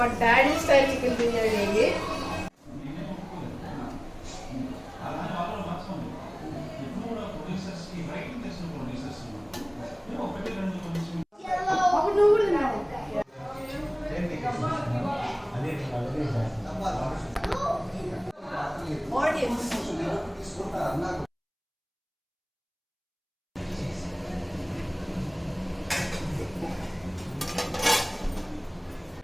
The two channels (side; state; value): both; identical; correlation 1.00